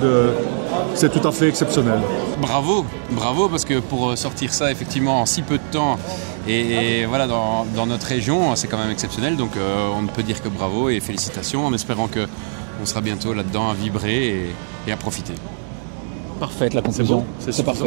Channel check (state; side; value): silent; left; digital silence